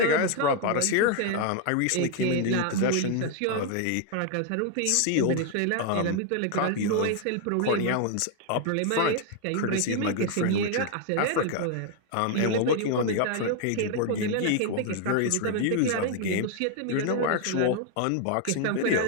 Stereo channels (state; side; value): different; both; correlation 0.00